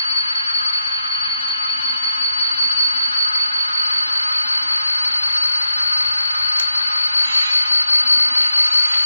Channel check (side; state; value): both; inverted; correlation -0.82